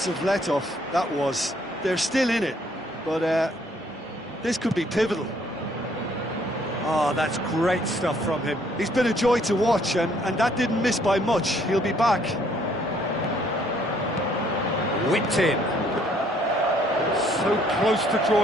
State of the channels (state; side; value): normal; both; correlation 0.64